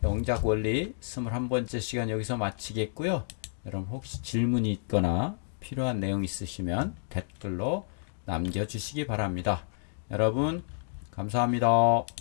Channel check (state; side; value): silent; right; digital silence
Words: 영작 원리 21번째 시간 여기서 마치겠고요. 여러분 혹시 질문이 있거나 필요한 내용 있으시면 댓글로 남겨주시기 바랍니다. 여러분 감사합니다.